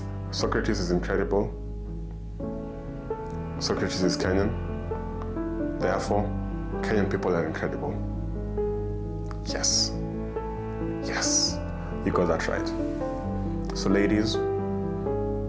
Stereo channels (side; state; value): both; identical; correlation 1.00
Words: Socrates is incredible. Socrates is Kenyan. Therefore, Kenyan people are incredible. Yes. Yes. You got that right. So ladies,